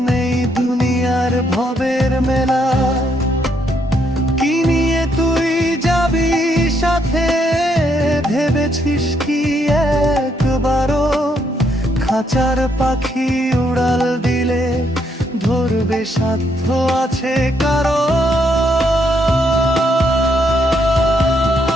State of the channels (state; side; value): normal; both; correlation 0.74